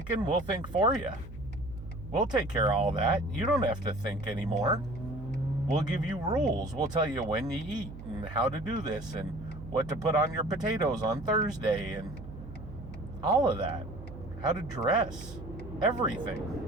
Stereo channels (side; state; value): right; noise; hum, 13 dB below the sound